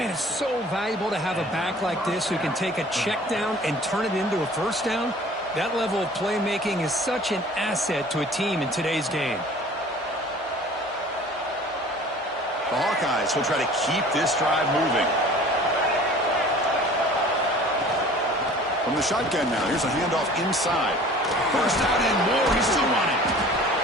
it's so valuable to have a back like this who can take a check down and turn it into a first down. That level of playmaking is such an asset to a team in today's game. The Hawkeyes will try to keep this drive moving. From the shotgun now, here's a handoff inside. First down and more, he's still running.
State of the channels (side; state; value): both; normal; correlation 0.47